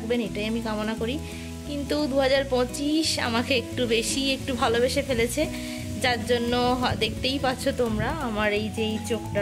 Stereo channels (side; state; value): both; identical; correlation 1.00